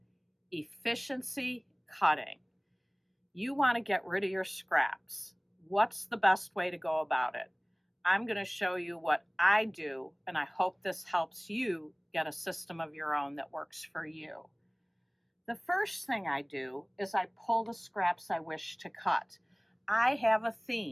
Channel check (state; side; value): identical; both; correlation 1.00